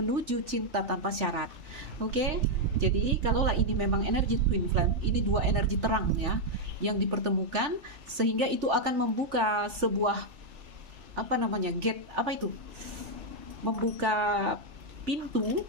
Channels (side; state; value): left; late; 3.4 ms